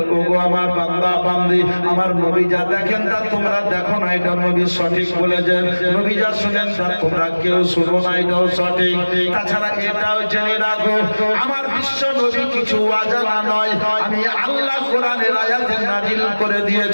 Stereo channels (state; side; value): inverted; both; correlation -1.00